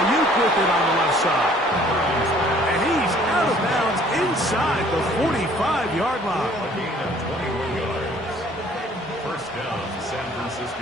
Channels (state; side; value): normal; both; correlation 0.57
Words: with it on the left side. And he's out of bounds inside the 45-yard line. A gain of 21 yards. First down, San